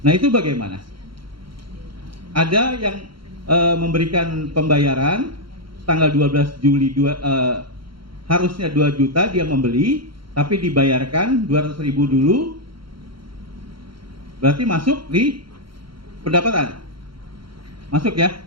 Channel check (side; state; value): left; late; 0.73 ms